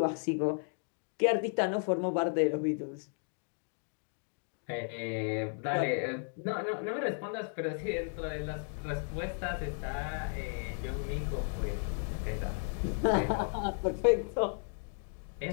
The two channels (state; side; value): silent; right; 55 dB below the other